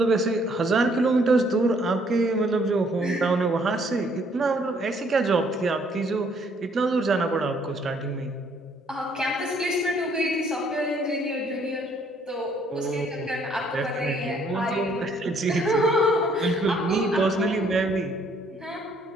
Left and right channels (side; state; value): both; normal; correlation 0.65